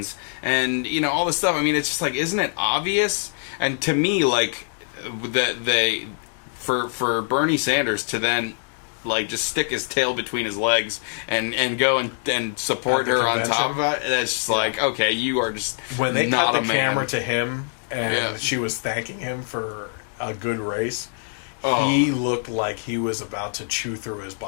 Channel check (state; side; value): silent; right; 63 dB below the other